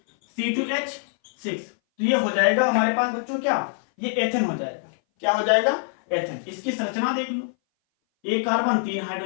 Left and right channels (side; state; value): right; silent; 59 dB below the other